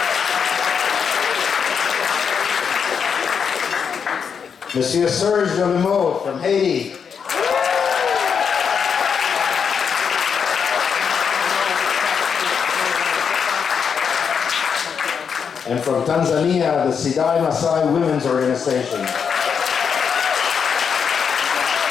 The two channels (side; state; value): right; quieter; 6.7 dB